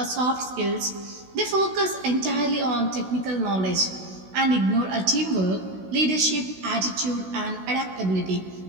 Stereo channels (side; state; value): left; late; 16 ms